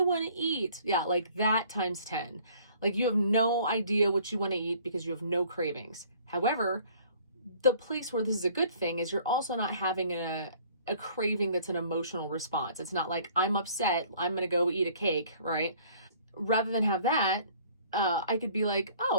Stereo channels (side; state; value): both; inverted; correlation -0.55